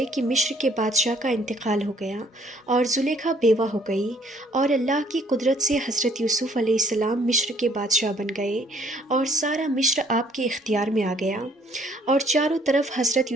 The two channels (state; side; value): normal; both; correlation 0.62